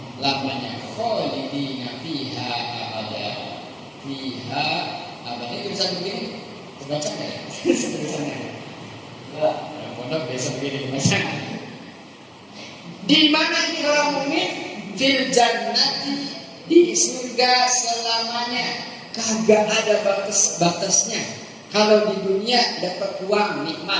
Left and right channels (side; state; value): both; identical; correlation 1.00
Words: Khalidina fiha abada, fiha abada. Itu bisa begini, terbaca nggak ya? Tulisannya. Pondok biasa begini baca. Di mana ini orang mukmin? Fil jannati, di surga selamanya. Kagak ada batas-batasnya. Kalau di dunia dapat uang